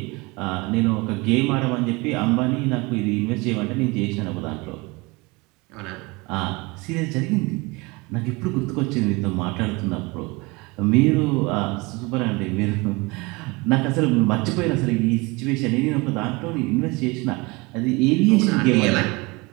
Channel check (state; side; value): quieter; left; 25.3 dB